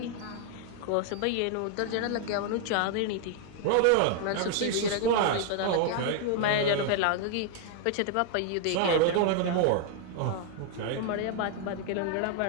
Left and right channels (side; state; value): both; different; correlation 0.00